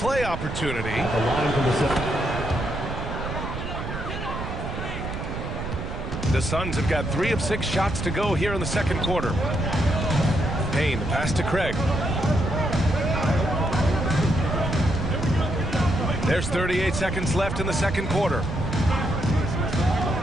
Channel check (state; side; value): noise; right; rumble, 6 dB below the sound